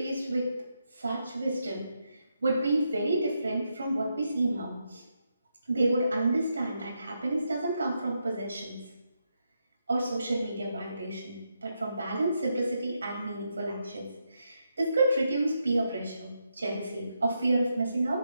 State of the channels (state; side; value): inverted; both; correlation -0.83